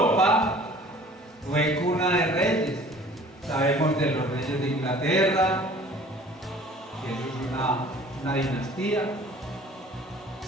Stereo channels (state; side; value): normal; both; correlation 0.49